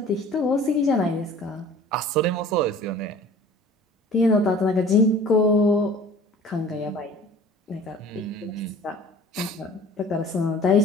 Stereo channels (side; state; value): both; normal; correlation 0.46